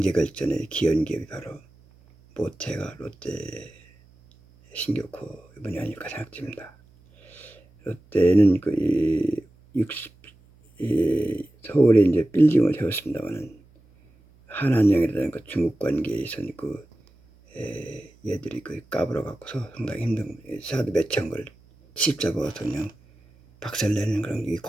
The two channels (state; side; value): noise; right; hum, 29 dB below the sound